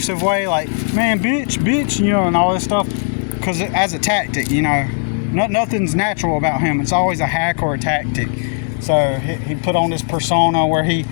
way, like, man, bitch, you know, and all this stuff, because as a tactic, you know, nothing's natural about him. It's always a hack or a tactic. So he put on this persona where he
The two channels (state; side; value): silent; right; 68 dB below the other